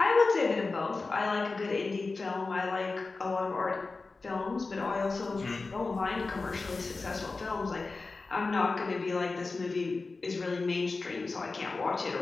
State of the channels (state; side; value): quieter; right; 3.9 dB